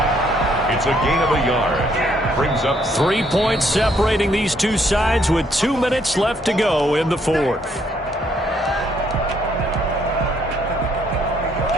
It's a gain of a yard. Brings up 3 points separating these two sides with 2 minutes left to go in the 4th.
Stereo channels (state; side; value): normal; both; correlation 0.69